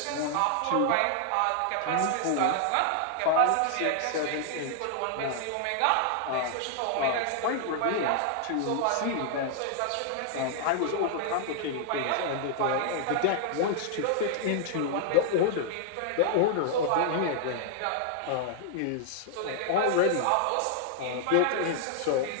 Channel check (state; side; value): different; both; correlation 0.00